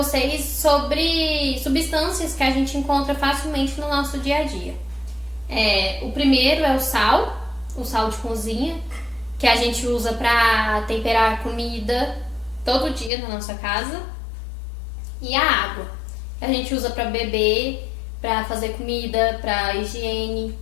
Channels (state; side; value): drops out; right; at 13.1 s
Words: sobre substâncias que a gente encontra facilmente no nosso dia a dia. O primeiro é o sal de cozinha, que a gente usa para temperar comida todo dia na nossa casa. E a água, que a gente usa para beber, para fazer comida, para higiene.